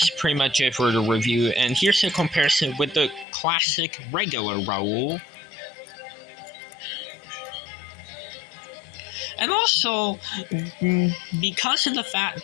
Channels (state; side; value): drops out; right; at 3.2 s